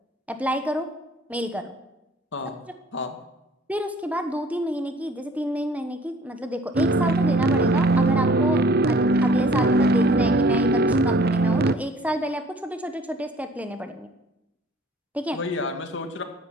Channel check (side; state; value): both; normal; correlation 0.53